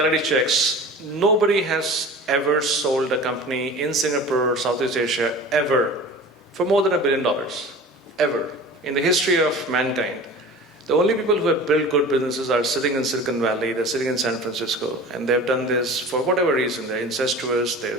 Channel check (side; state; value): both; normal; correlation 0.38